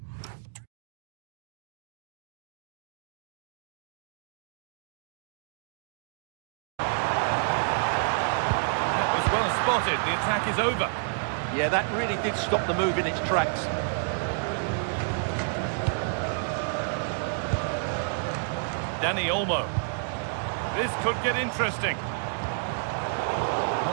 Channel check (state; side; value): silent; left; digital silence